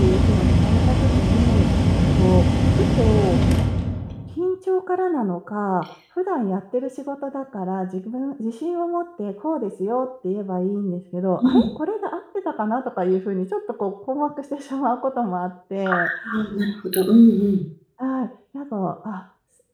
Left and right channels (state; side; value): identical; both; correlation 1.00